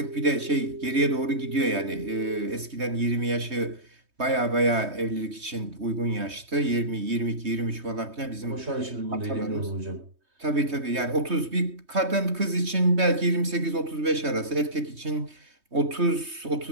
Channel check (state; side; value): late; left; 3.2 ms